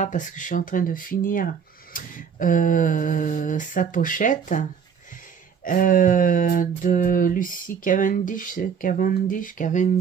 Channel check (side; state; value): left; quieter; 6.9 dB